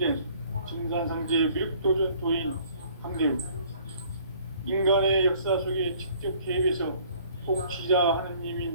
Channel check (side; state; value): both; inverted; correlation -0.56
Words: 증산상제 미륵도전 도인 강대우. 인간의 역사 속에 직접 개입해서 통치자